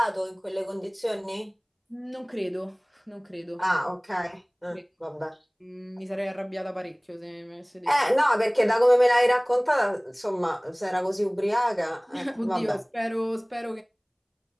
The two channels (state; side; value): identical; both; correlation 1.00